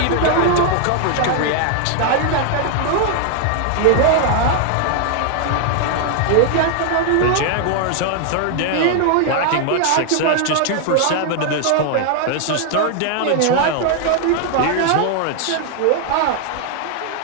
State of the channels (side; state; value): both; different; correlation 0.00